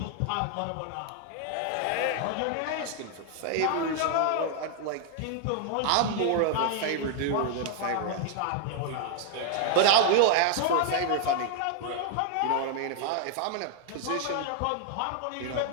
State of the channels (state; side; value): different; both; correlation 0.00